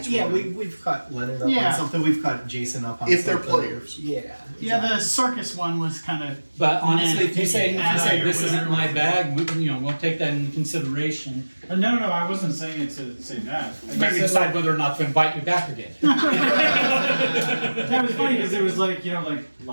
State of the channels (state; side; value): inverted; both; correlation -1.00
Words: one. We've caught Leonard up Yeah. on something. We've caught Jason up on If they're something. players. Yeah. yeah, the circus one was kind of. But honestly, if you say Yeah. this isn't my bag, we'll take that into consideration. No, I wasn't saying it to say that. I Maybe just said, decide whether or not to invite you back again. that was funny because it was like, like